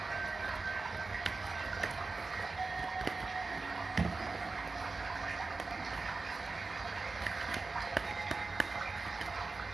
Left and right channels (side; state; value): left; quieter; 3.8 dB